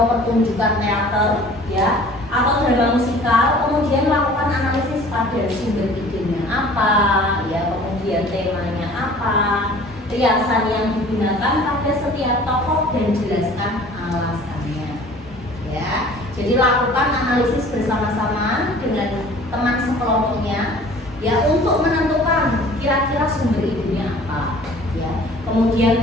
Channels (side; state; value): both; normal; correlation 0.48